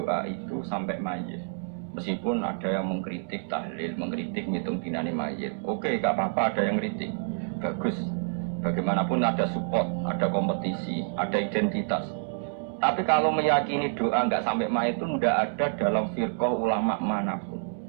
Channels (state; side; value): silent; left; digital silence